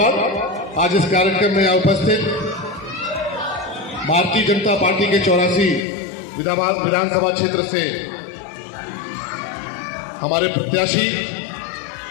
आज इस कार्यक्रम में यहाँ उपस्थित भारतीय जनता पार्टी के 84 विधानसभा क्षेत्र से हमारे प्रत्याशी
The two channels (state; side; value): drops out; right; at 5.8 s